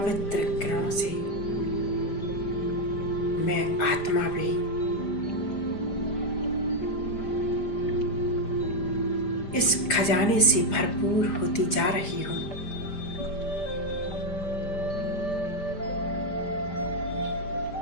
किरणों से मैं आत्मा भी इस खजाने से भरपूर होती जा रही हूँ।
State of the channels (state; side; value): late; right; 5.0 ms